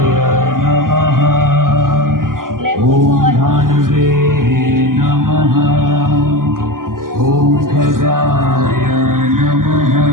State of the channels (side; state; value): left; late; 0.91 ms